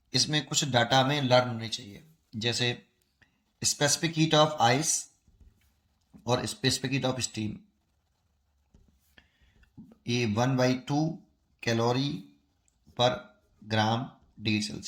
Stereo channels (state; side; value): identical; both; correlation 1.00